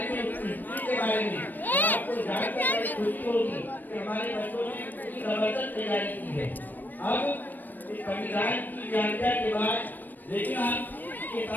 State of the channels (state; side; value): late; right; 0.089 ms